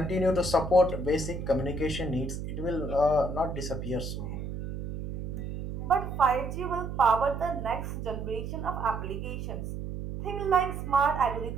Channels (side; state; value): right; noise; hum, 6 dB below the sound